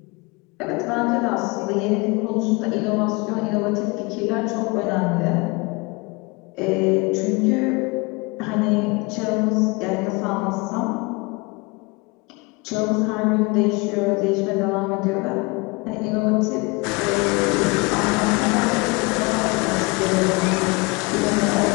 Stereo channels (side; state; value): right; quieter; 27.1 dB